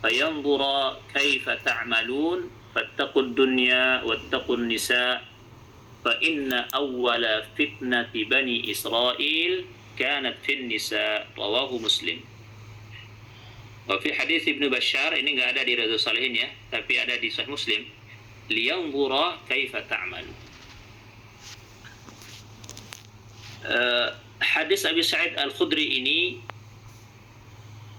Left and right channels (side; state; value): both; identical; correlation 1.00